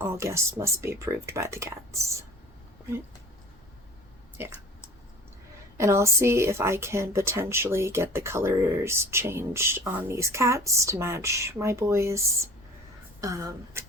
guests must be approved by the cats. Right? Yeah. And I'll see if I can potentially get the colors changed on these cats to match my boys.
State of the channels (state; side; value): normal; both; correlation 0.43